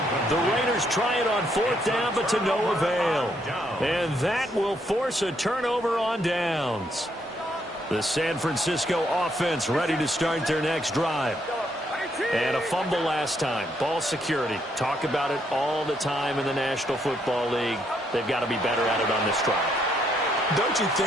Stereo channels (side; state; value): both; normal; correlation 0.73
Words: The Raiders try it on 4th down, but to no avail. And that will force a turnover on downs. The San Francisco offense ready to start their next drive. And a fumble last time. Ball security. Talk about it all the time in the National Football League. They've got to be better at it on this drive. Don't you